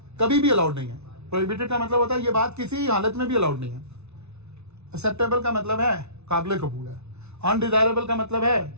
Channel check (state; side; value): late; left; 0.81 ms